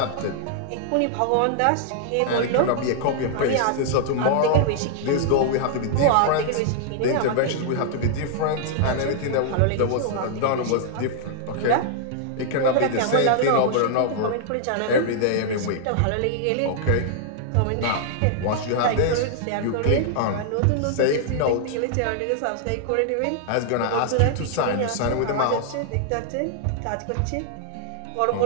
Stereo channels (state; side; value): different; both; correlation -0.01